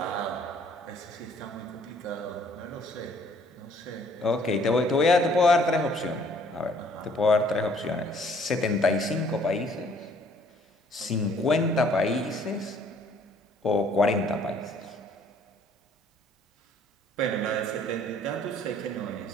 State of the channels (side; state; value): both; normal; correlation 0.60